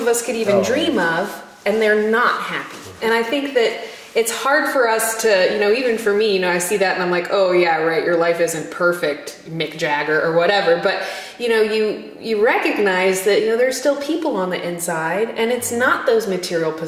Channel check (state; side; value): identical; both; correlation 1.00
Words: us could even dream of, and they're not happy. And I think that it's hard for us to, even for me, I see that and I'm like, oh yeah, right, your life isn't perfect, Mick Jagger or whatever. But, you recognize that, there's still people on the inside, and it's not those material